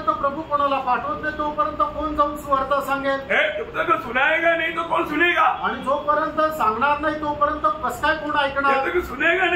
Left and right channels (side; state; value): both; identical; correlation 1.00